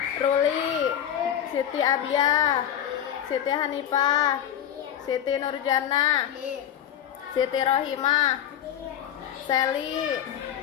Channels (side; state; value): right; quieter; 10.2 dB